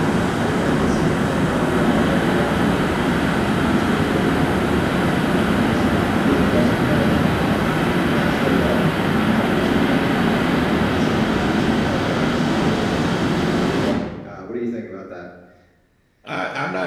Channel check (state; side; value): identical; both; correlation 1.00